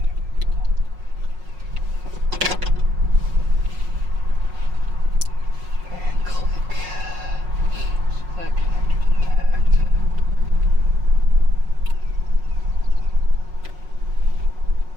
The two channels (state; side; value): late; left; 5.5 ms